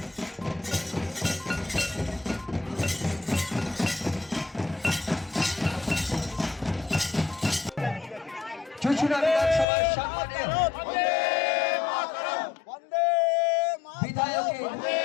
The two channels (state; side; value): drops out; right; at 9.7 s